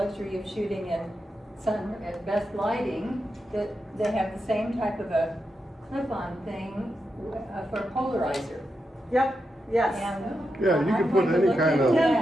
of shooting in sun at best lighting, that they have the same type of a clip-on thing for a polarizer. Yep, yes. And Yeah, you can put I'm going to any look kind into of You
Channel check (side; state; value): both; normal; correlation 0.87